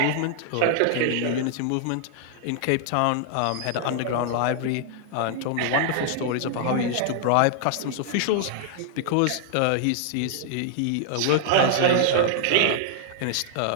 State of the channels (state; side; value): different; both; correlation 0.00